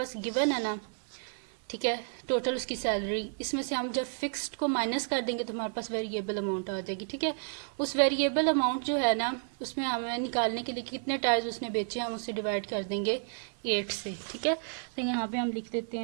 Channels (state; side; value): silent; left; digital silence